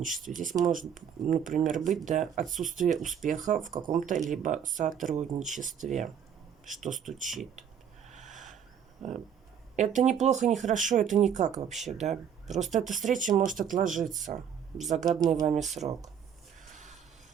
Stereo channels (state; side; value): quieter; left; 8.3 dB